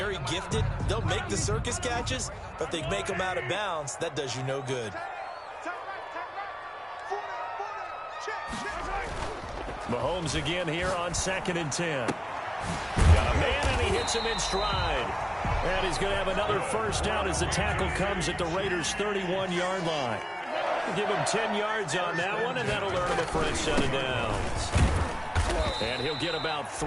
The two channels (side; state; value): both; identical; correlation 1.00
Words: gifted. They'll make the circus catches, but if they make them out of bounds, that does you no good. Mahomes again here on 2nd and 10. Got a man, and he hits him in stride. And he's going to have another 1st down as the tackle comes at the Raiders' 31-yard line. Give him 10 yards on that one, and that'll earn him a fresh set of downs. And he'll get about